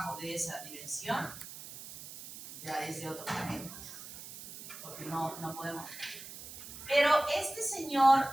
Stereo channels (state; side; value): noise; right; hiss, 13 dB below the sound